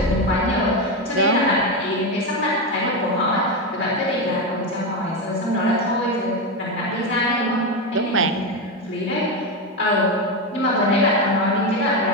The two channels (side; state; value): both; normal; correlation 0.12